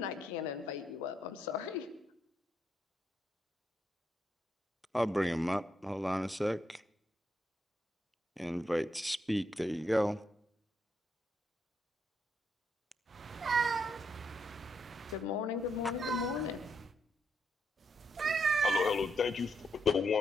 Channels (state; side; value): normal; both; correlation 0.78